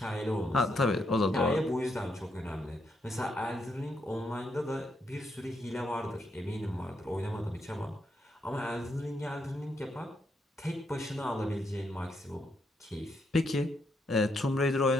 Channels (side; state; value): both; normal; correlation 0.78